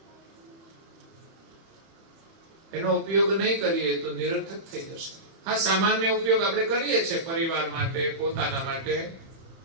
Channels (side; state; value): left; late; 31 ms